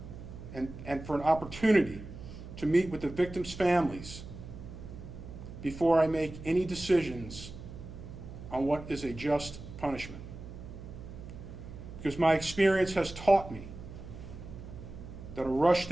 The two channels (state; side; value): noise; right; hum, 12 dB below the sound